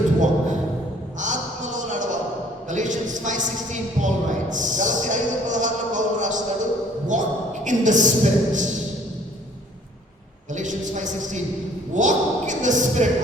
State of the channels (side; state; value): both; normal; correlation 0.57